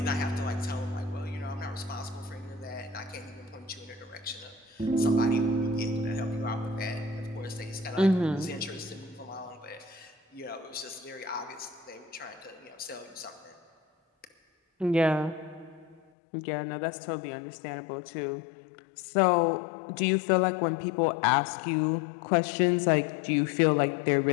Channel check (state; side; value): drops out; right; at 16.0 s